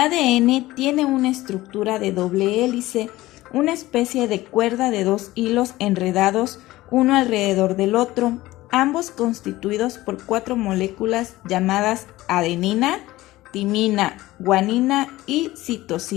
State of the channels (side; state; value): right; quieter; 17.5 dB